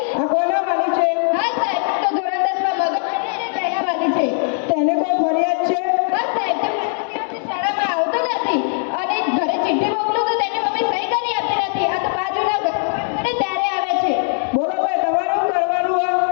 આ કોના વાલી છે? હા સાહેબ, તો ધોરણ 10 માં મગજ તેના વાલી છે. તેને કોઈ ફરિયાદ છે? હા સાહેબ, તે દિવસથી શાળામાં આવતો નથી અને ઘરે ચિઠ્ઠી મોકલું તો તેની મમ્મી સહી કરી આપતી નથી. આ તો બાજુના ઘરે ત્યારે આવે છે. બોલો ભાઈ, તમારે શું કરવાનું આ?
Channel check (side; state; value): right; silent; digital silence